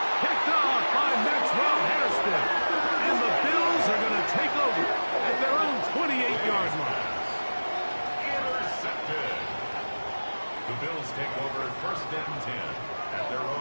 Picked off by Maxwell Hairston. And the Bills are going to take over at their own 28-yard line. Intercepted. The Bills take over first and 10 at their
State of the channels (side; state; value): both; inverted; correlation -1.00